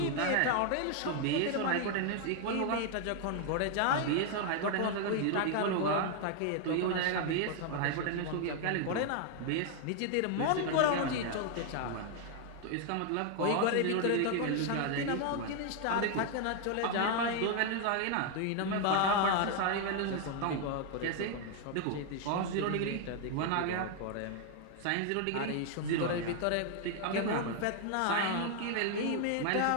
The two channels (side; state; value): both; different; correlation 0.00